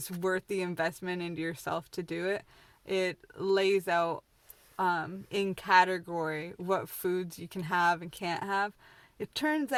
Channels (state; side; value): identical; both; correlation 1.00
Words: worth the investment into yourself to do it. It lays out in category what foods you can have and can't have. It turns